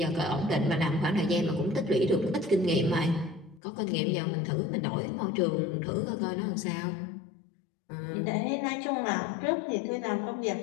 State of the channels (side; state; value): right; drops out; at 3.6 s